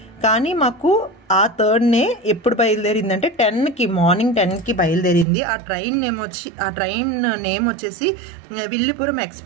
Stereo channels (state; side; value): drops out; left; at 5.2 s